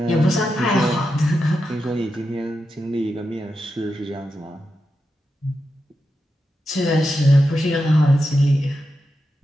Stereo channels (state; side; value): normal; both; correlation 0.88